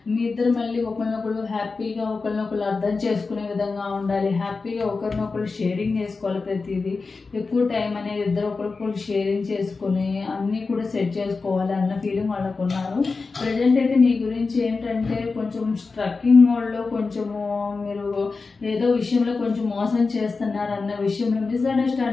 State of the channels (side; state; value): right; quieter; 4.2 dB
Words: మీ ఇద్దరు మళ్ళీ ఒకరినొకరు హ్యాపీగా ఒకరినొకరు అర్థం చేసుకునే విధంగా ఉండాలి. హ్యాపీగా ఒకరినొకరు షేరింగ్ చేసుకోవాలి. ప్రతిదీ ఎక్కువ టైం అనేది ఇద్దరు ఒకరికొకరు షేరింగ్ చేసుకుని అన్నీ కూడా సెట్ చేసుకోవాలి అన్న ఫీలింగ్ వాళ్ళకు ఉన్నారు. ప్రజెంట్ అయితే మీ గురించి ఏంటంటే కొంచెం స్ట్రక్కింగ్ మోడ్లో, కొంచెము మీరు ఏదో విషయంలో కొంచెం మోసం చేస్తున్నారు అన్న విషయంలో